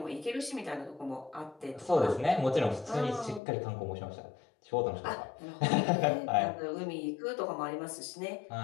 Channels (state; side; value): drops out; right; at 3.4 s